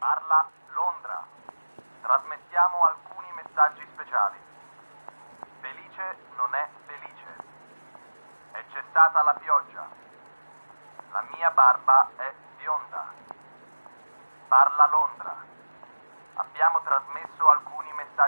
Londra. Trasmettiamo alcuni messaggi speciali. Felice non è felice. È cessata la pioggia. La mia barba è bionda. Parla Londra. Abbiamo trasmesso alcuni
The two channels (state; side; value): inverted; both; correlation -1.00